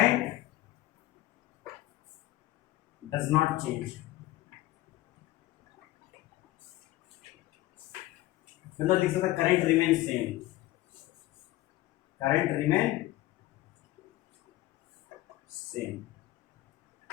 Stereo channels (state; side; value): quieter; right; 16.9 dB